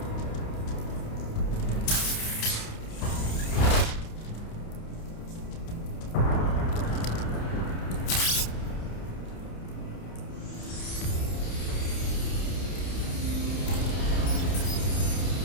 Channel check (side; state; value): right; late; 29 ms